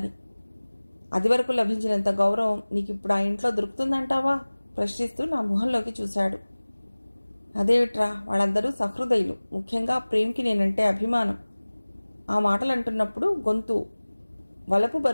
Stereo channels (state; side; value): inverted; both; correlation -1.00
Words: అది వరకు లభించినంత గౌరవం నీకిప్పుడు ఆ ఇంట్లో దొరుకుతుందంటావా? ప్రశ్నిస్తూ నా మొహంలోకి చూశాడు. అదేమిట్రా, వాళ్ళందరూ సహృదయులు. ముఖ్యంగా ప్రేమ్కి నేనంటే అభిమానం. ఆ మాటలు అంటున్నప్పుడు గొంతు వలపు